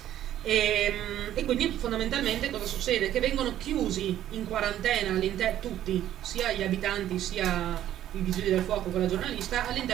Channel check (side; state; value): left; quieter; 12.0 dB